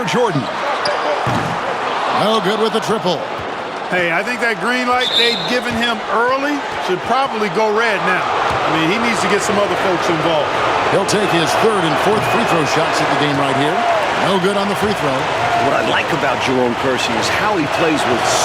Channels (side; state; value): both; identical; correlation 1.00